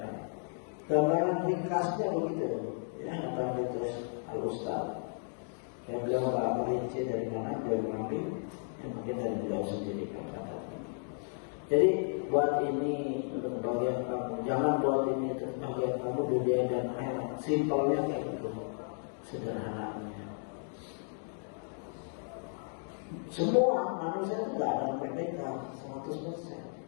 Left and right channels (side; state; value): right; silent; 55 dB below the other